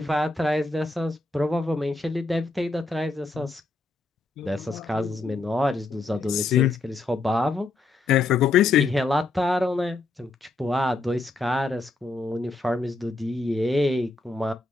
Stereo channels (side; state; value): right; quieter; 3.3 dB